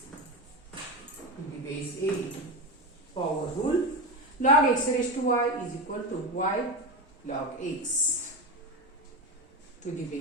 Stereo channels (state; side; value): normal; both; correlation 0.18